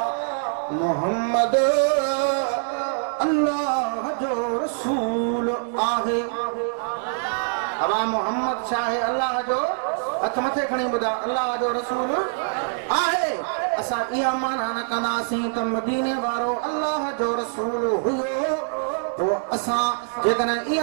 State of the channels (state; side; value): silent; left; digital silence